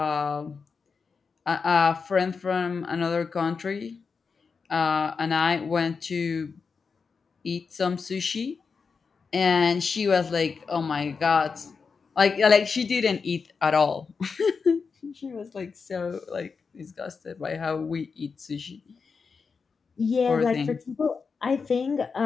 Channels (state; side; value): quieter; right; 5.2 dB